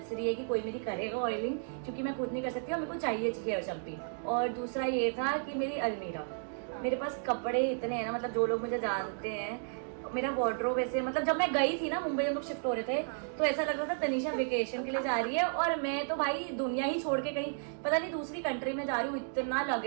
है कि कोई मेरी करेगा ऑयलिंग, क्योंकि मैं खुद नहीं कर सकती और मेरे को चाहिए हेयर शैम्पू। और दूसरा ये था कि मेरी अलमीरा, मेरे पास कपड़े इतने हैं ना, मतलब जो लोग मुझे जानते हैं, मेरा वार्डरोब ऐसे, मतलब जब मैं गई थी ना मुंबई, हम लोग शिफ्ट हो रहे थे, तो ऐसा लग रहा था तनीषा वेकेशन के लिए जा रही है और मैं तो भाई दुनिया ही छोड़ के कहीं पता नहीं दूसरी कंट्री में जा रही हूँ, इतना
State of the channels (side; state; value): left; silent; digital silence